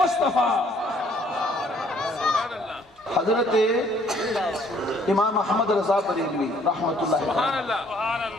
حضرت امام احمد رضا بریلوی رحمت اللہ علیہ,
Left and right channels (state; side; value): normal; both; correlation 0.62